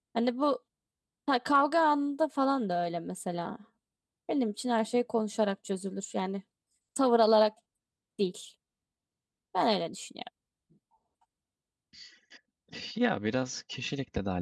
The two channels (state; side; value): identical; both; correlation 1.00